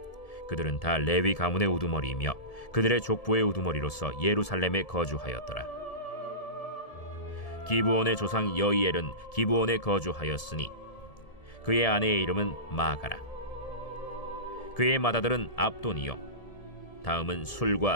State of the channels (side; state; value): right; late; 1.7 ms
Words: 그들은 다 레위 가문의 우두머리이며 그들의 족보의 우두머리로서 예루살렘에 거주하였더라. 기브온의 조상 여이엘은 기브온에 거주하였으니 그의 아내의 이름은 마가라. 그의 맏아들은 압돈이요 다음은